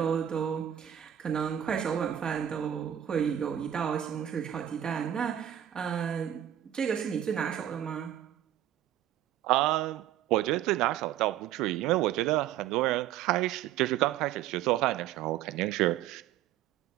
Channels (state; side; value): quieter; left; 11.3 dB